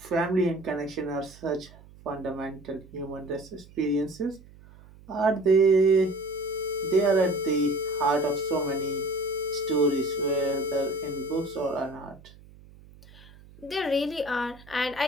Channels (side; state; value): right; noise; hum, 23 dB below the sound